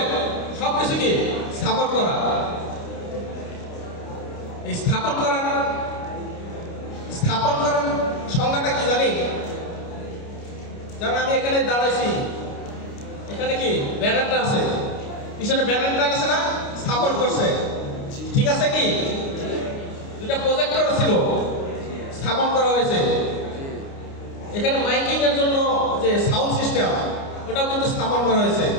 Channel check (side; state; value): right; late; 29 ms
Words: সব কিছু কি স্থাপন করা। এই স্থাপন করার সংজ্ঞাটা কি জানি? যেমন আমি এখানে দাঁড়াইছি, এখানে কি ব্যানারটা আছে, পিছনে ব্যানারটা আছে না, স্থাপন করছে, ঠিক আছে কি? দুটা প্রজেক্টর ছিল, স্থাপন করা হয়েছে। এখানে মাইকিং এর জন্য যে সাউন্ড সিস্টেম, ওটাও কিন্তু স্থাপন করা হয়েছে,